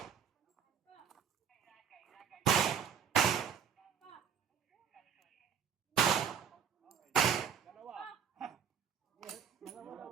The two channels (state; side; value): quieter; left; 7.6 dB